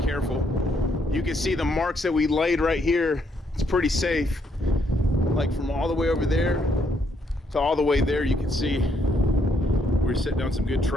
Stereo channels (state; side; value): normal; both; correlation 0.73